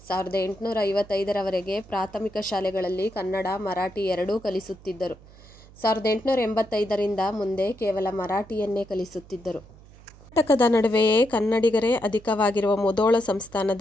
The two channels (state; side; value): noise; right; hum, 22 dB below the sound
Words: 1855ರವರೆಗೆ ಪ್ರಾಥಮಿಕ ಶಾಲೆಗಳಲ್ಲಿ ಕನ್ನಡ, ಮರಾಠಿ ಎರಡೂ ಕಲಿಸುತ್ತಿದ್ದರು. 1885ರಿಂದ ಮುಂದೆ ಕೇವಲ ಮರಾಠಿಯನ್ನೇ ಕಲಿಸುತ್ತಿದ್ದರು. ಕರ್ನಾಟಕದ ನಡುವೆಯೇ ಕನ್ನಡಿಗರೇ ಅಧಿಕವಾಗಿರುವ ಮುಧೋಳ